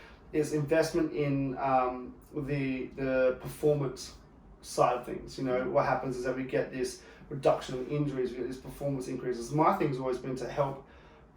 is investment in the performance side of things. You know, what happens is that we get this reduction in injuries, we get this performance increases. My thing's always been to help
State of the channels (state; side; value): identical; both; correlation 1.00